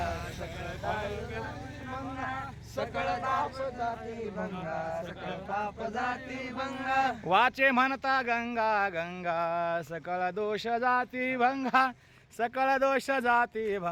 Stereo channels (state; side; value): identical; both; correlation 1.00